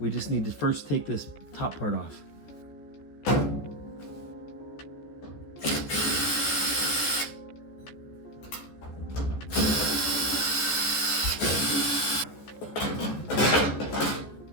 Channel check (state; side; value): late; right; 14 ms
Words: just need to first take this top part off.